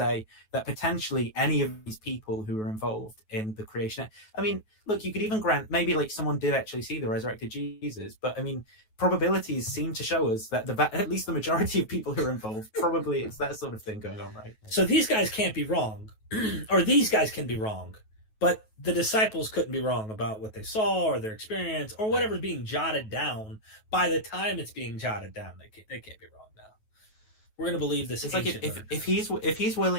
that potentially any of these people who were involved in the creation. I mean, look, you could even grant maybe like someone did actually see the resurrected Jesus, but I mean, probabilities seem to show us that at least the majority of people who are involved, probably it's that sort of thing going on, right? So these guys can't be wrong, or these guys can be wrong, but the disciples couldn't be wrong about what they saw or their experience or whatever's being jotted down. By the time it's being jotted down, they can't be wrong now. We're going to believe this. It's like if he's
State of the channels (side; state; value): right; late; 9.3 ms